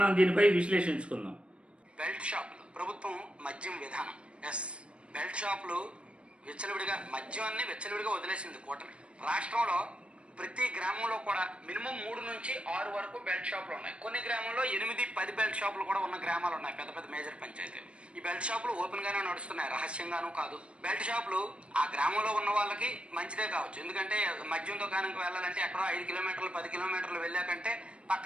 దీనిపై విశ్లేషించుకుందాం. బెల్ట్ షాపులు ప్రభుత్వం మద్యం విధానం. బెల్ట్ షాపులు విచ్చలవిడిగా మద్యాన్ని విచ్చలవిడిగా వదిలేసింది కూటమి. రాష్ట్రంలో ప్రతి గ్రామంలో కూడా మినిమం 3 నుంచి 6 వరకు బెల్ట్ షాపులు ఉన్నాయి. కొన్ని గ్రామంలో 8-10 బెల్ట్ షాపులు కూడా ఉన్న గ్రామాలు ఉన్నాయి, పెద్ద పెద్ద మేజర్ పంచాయతీలు. ఈ బెల్ట్ షాపులు ఓపెన్ గానే నడుస్తున్నాయి, రహస్యంగానూ కాదు. బెల్ట్ షాపులు ఆ గ్రామంలో ఉన్న వాళ్ళకి మంచిదే కావచ్చు, ఎందుకంటే మద్యం దుకాణంకి వెళ్ళాలంటే ఎక్కడో 5 కిలోమీటర్లు 10 కిలోమీటర్లు వెళ్ళాకంటే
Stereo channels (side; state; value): left; late; 0.059 ms